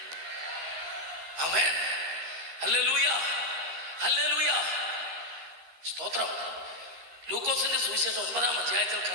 ആമേൻ ഹല്ലേലൂയ ഹല്ലേലൂയ സ്തോത്രം. ലൂക്കോസിന്റെ സുവിശേഷം 9-ാം അധ്യായത്തിൽ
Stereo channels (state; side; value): late; left; 13 ms